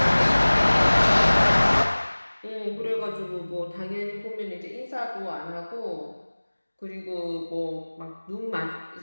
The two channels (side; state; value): both; inverted; correlation -1.00